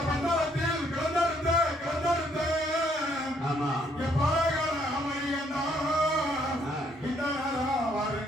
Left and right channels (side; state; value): both; normal; correlation 0.69